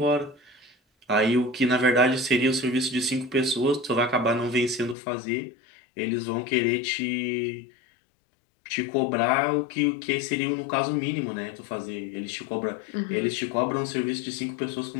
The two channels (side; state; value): right; drops out; at 5.0 s